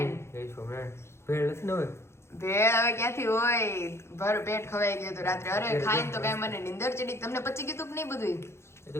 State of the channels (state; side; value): late; right; 0.13 ms